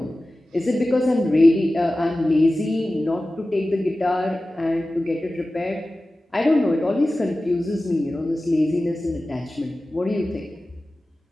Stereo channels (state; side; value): normal; both; correlation 0.96